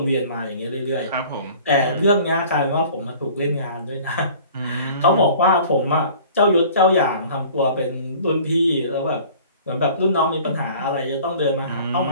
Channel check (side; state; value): both; inverted; correlation -0.48